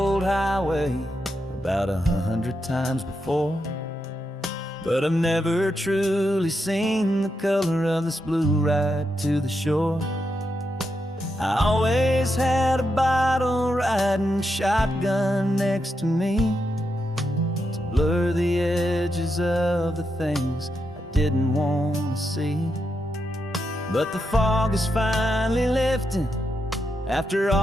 highway about 100 times before, but I've never truly seen the color of this blue right to the shore. I always had a bottle riding shotgun next to me to blur the edges of the things I didn't want to see. But the fog is finally lifting after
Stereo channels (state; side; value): normal; both; correlation 0.84